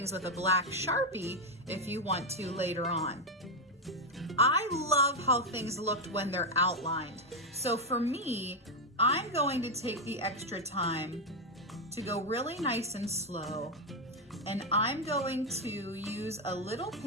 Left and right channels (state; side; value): normal; both; correlation 0.04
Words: with a black Sharpie if you want to later on. I love how things looked when they're outlined. So for me, I'm going to take the extra time to go really nice and slow, and I'm going to use a little